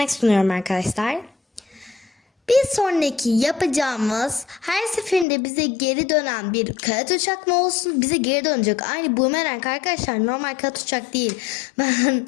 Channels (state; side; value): drops out; right; at 5.2 s